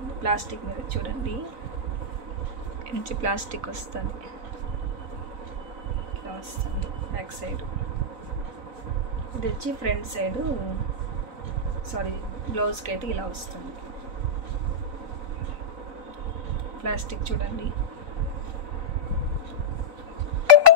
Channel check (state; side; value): late; left; 3.9 ms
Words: ప్లాస్టిక్ మిర్రర్ చూడండి. నుంచి ప్లాస్టిక్ వస్తుంది. ఇట్లా వస్తుంది బ్యాక్ సైడ్. ఇది వచ్చి ఫ్రంట్ సైడు బ్లౌజ్కి అయితే ఇలా వస్తుంది. ప్లాస్టిక్ చూడండి.